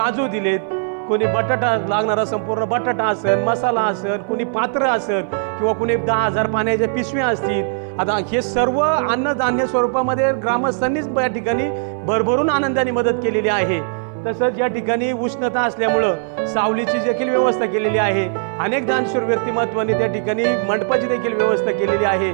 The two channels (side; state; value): left; silent; 62 dB below the other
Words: दिलेत, कोणी बटाटा लागणारा संपूर्ण बटाटा असेल, मसाला असेल, कोणी पात्र असेल किंवा कोणी 10,000 पाण्याच्या पिशव्या असतील। आता हे सर्व अन्नधान्य स्वरूपामध्ये ग्रामस्थांनीच या ठिकाणी भरभरून आनंदाने मदत केलेली आहे। तसंच या ठिकाणी उष्णता असल्यामुळं सावलीची देखील व्यवस्था केलेली आहे। अनेक दानशूर व्यक्तिमत्वांनी त्या ठिकाणी मंडपाची देखील व्यवस्था केलेली आहे।